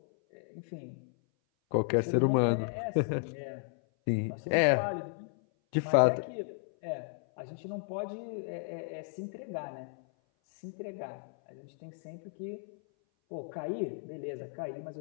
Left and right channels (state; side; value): silent; right; 55 dB below the other